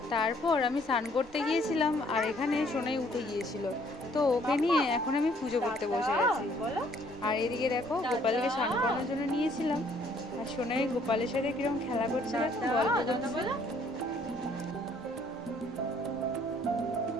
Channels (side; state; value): right; noise; rumble, 24 dB below the sound